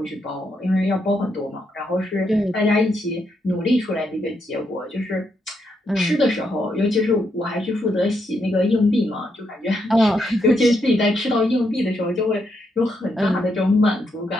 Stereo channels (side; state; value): both; normal; correlation 0.79